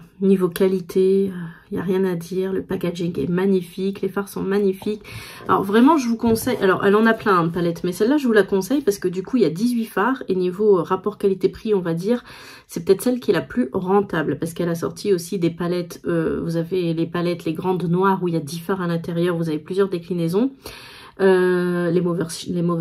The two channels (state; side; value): identical; both; correlation 1.00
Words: niveau qualité, il n'y a rien à dire. Le packaging est magnifique, les fards sont magnifiques. Alors vraiment, je vous conseille, alors elle en a plein de palettes, mais celle-là, je vous la conseille parce que du coup, il y a 18 fards. Et niveau rapport qualité-prix, on va dire, c'est peut-être celle qui est la plus rentable. Parce qu'elle a sorti aussi des palettes, vous avez les palettes, les grandes noires où il y a 10 fards à l'intérieur, vous avez plusieurs déclinaisons. Les